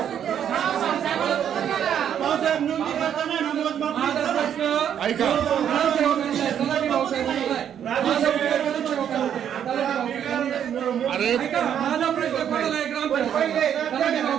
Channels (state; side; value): quieter; left; 9.2 dB